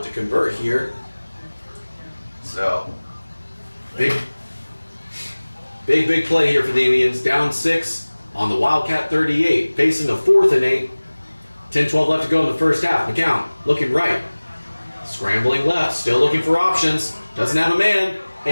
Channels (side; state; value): both; inverted; correlation -1.00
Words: to convert here. So, big play here for the Indians. Down 6 on the Wildcat 38, facing the 4th and 8. 10-12 left to go in the first half. McCown looking right. Scrambling left, still looking for options. Doesn't have a man.